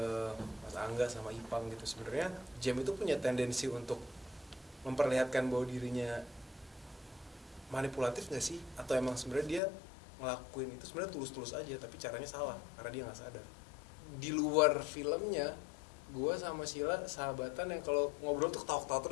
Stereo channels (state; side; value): drops out; right; at 9.6 s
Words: Mas Angga sama Ipang gitu, sebenarnya Jem itu punya tendensi untuk memperlihatkan bahwa dirinya manipulatif nggak sih, atau emang sebenarnya dia ngelakuin itu sebenarnya tulus-tulus aja tapi caranya salah karena dia nggak sadar. Di luar filmnya gue sama Sheila sahabatan yang kalau ngobrol tuh ketawa-ketawa